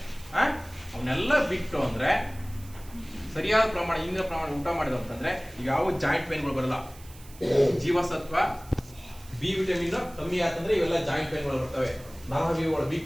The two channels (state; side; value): noise; right; hiss, 21 dB below the sound